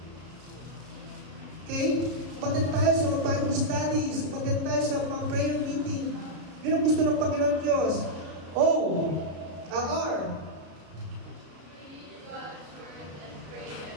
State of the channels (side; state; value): left; late; 33 ms